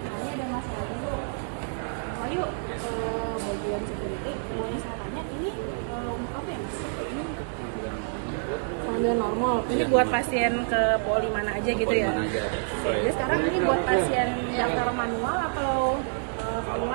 Ini ada masalah dulu. Lalu bagian security, boleh saya tanya ini untuk apa ya Mas? Ini panggilan normal. Ini buat pasien ke poli mana aja gitu ya? Jadi sekarang ini buat pasien daftar manual atau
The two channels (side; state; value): left; silent; digital silence